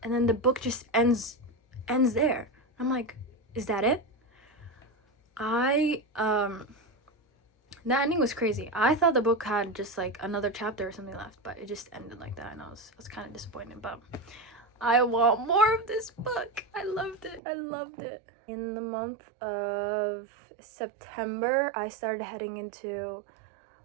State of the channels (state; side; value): drops out; left; at 17.4 s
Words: And then the book just ends there. I'm like, is that it? That ending was crazy. I thought the book had just like another chapter or something left, but it just ended like that, and I was kind of disappointed, but I want more of this book. I loved it. In the month of September, I started heading into